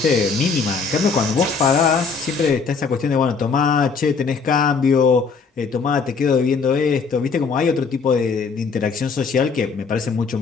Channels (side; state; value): right; quieter; 5.1 dB